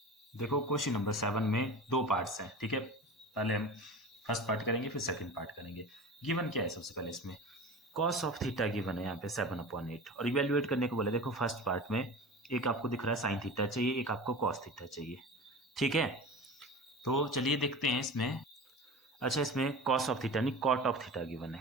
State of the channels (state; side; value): normal; both; correlation 0.34